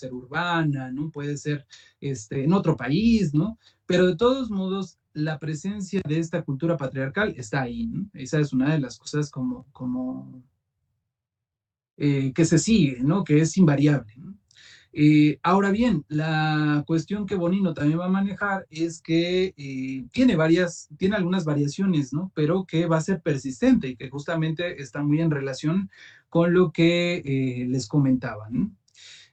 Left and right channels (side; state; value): both; identical; correlation 1.00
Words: urbana, ¿no? Puede ser en otro país, ¿no? Pero de todos modos, la presencia de esta cultura patriarcal está ahí, ¿no? Esa es una de las cosas como que se sigue, ¿no? Que es invariable, ¿no? Ahora bien, la cuestión que Bonino también va a manejar es que tiene algunas variaciones, ¿no? Pero que va a ser persistente y que justamente está muy en relación con lo que les comentaba, ¿no?